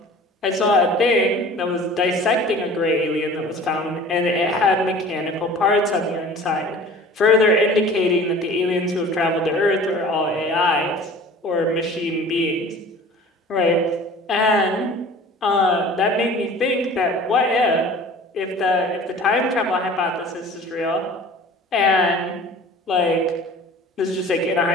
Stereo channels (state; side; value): normal; both; correlation 0.44